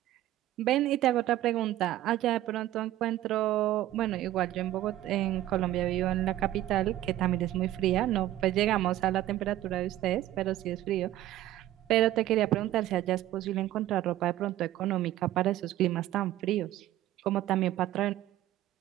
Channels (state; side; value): quieter; left; 14.3 dB